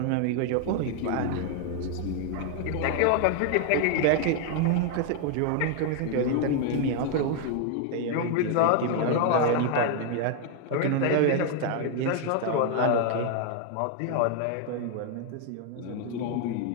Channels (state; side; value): different; both; correlation 0.00